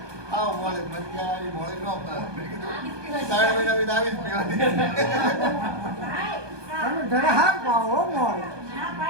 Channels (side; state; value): left; late; 1.2 ms